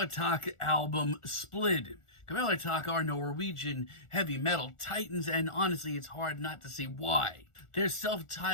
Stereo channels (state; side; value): late; right; 1.4 ms